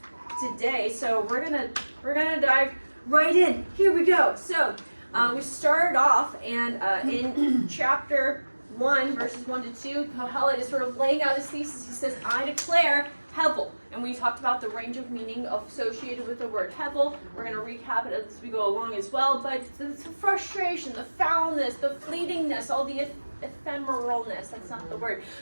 today. So we're gonna dive right in. Here we go. So we started off, and in chapter 1, verses 1 to 2, Kohelet is sort of laying out his thesis. He says, I declare Hevel. And we talked about the range of meaning associated with the word Hevel. We're going to recap it as we go along as well. But the frustration, the foulness, the fleetingness, all the ephemeralness, that's not the word,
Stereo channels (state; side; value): inverted; both; correlation -1.00